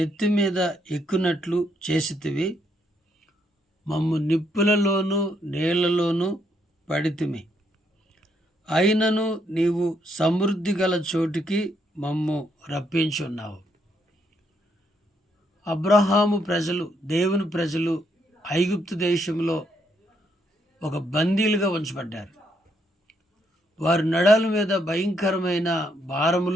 మీద ఎక్కునట్లు చేసితివి. మమ్ము నిప్పులలోనూ నీళ్లలోనూ పడితిమి. అయినను నీవు సమృద్ధి గల చోటికి మమ్ము రప్పించున్నావు. అబ్రహాము ప్రజలు, దేవుని ప్రజలు ఐగుప్తు దేశంలో ఒక బందీలుగా ఉంచబడ్డారు. వారి నడాల మీద భయంకరమైన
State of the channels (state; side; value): normal; both; correlation 0.74